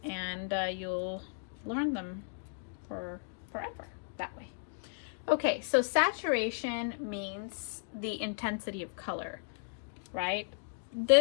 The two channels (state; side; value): silent; right; digital silence